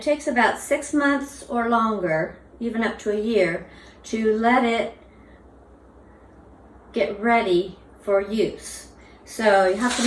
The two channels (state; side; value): identical; both; correlation 1.00